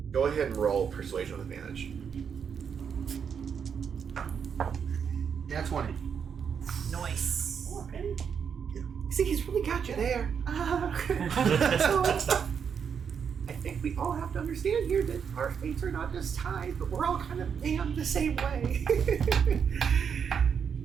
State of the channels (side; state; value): left; quieter; 7.0 dB